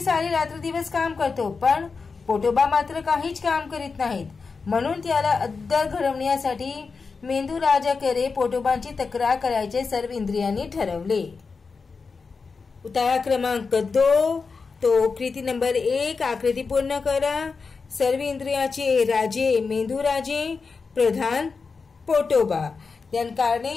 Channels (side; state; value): right; quieter; 4.8 dB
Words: सारी रात्र दिवस काम करतो, पण पोटोबा मात्र काहीच काम करीत नाहीत। म्हणून त्याला अद्दल घडवण्यासाठी मेंदू राजाकडे पोटोबांची तक्रार करायचे सर्व इंद्रियांनी ठरवले। उतारा क्रमांक 2 तो कृती नंबर 1 आकृती पूर्ण करा। सर्व इंद्रियाचे राजे मेंदू राजे, प्रधान पोटोबा। देन कारणे